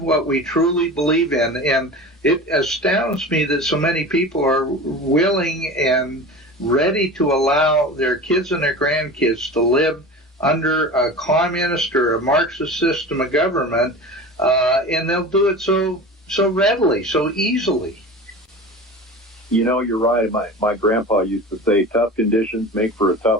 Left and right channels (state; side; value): normal; both; correlation 0.33